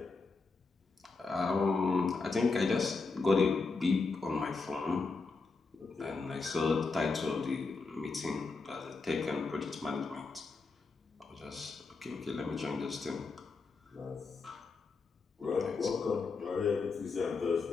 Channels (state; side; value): quieter; right; 4.2 dB